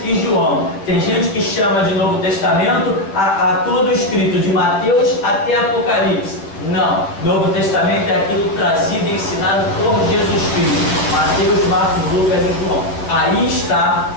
e João. Tem gente que chama de Novo Testamento a todo o escrito de Mateus até Apocalipse. Não. Novo Testamento é aquilo trazido e ensinado por Jesus Cristo. Mateus, Marcos, Lucas e João. Aí está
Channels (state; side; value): late; right; 10 ms